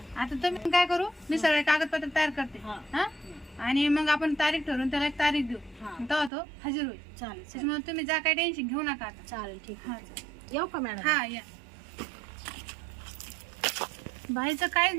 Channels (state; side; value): drops out; left; at 6.3 s